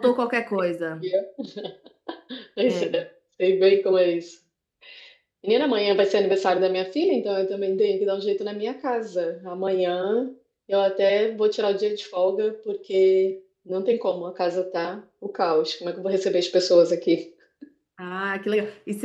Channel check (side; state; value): both; identical; correlation 1.00